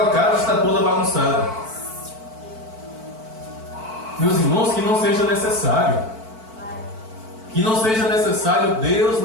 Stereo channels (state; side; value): late; left; 4.5 ms